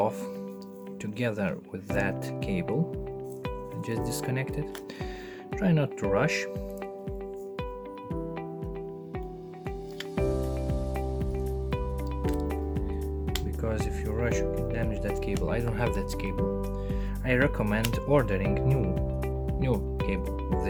together with that cable. I just disconnect it. Try not to rush. Because if you rush, you can damage that cable. I don't have that cable. I recommend ordering new cable with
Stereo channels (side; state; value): both; identical; correlation 1.00